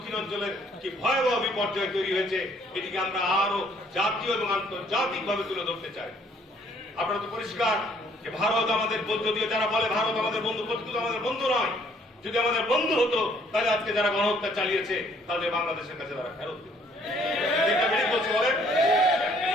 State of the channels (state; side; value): normal; both; correlation 0.63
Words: কি ভয়াবহ বিপর্যয় তৈরি হয়েছে, এটিকে আমরা আরো জাতীয় এবং আন্তর্জাতিক ভাবে তুলে ধরতে চাই। আপনারা তো পরিষ্কার যে ভারত আমাদের, যদিও যারা বলে ভারত আমাদের বন্ধু, প্রকৃত আমাদের বন্ধু নয়। যদি আমাদের বন্ধু হতো তাহলে আজকে যারা গণহত্যা চালিয়েছে তাহলে বাংলাদেশের কাছে তারা ফেরত দিত। বলেন